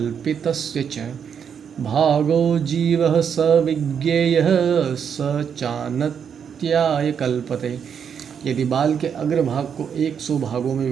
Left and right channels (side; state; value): left; quieter; 7.5 dB